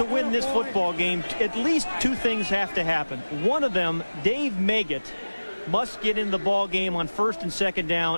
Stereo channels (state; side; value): inverted; both; correlation -1.00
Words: win this football game, at least 2 things have to happen. One of them, Dave Meggett must get in the ball game on 1st and 2nd